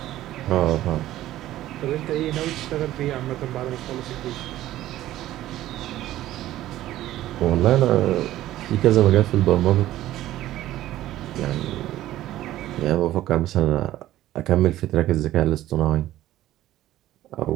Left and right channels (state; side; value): quieter; left; 14.3 dB